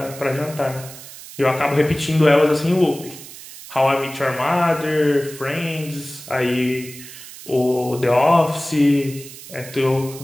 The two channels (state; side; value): noise; right; hiss, 15 dB below the sound